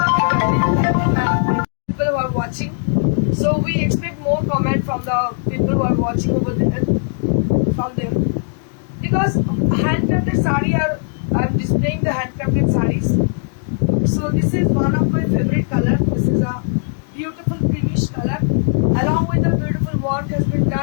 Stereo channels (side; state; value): right; silent; digital silence